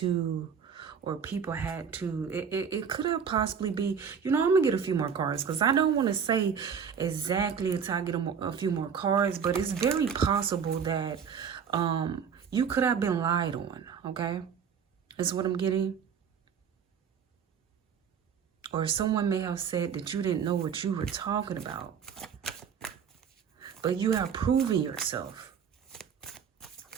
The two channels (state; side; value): quieter; left; 7.0 dB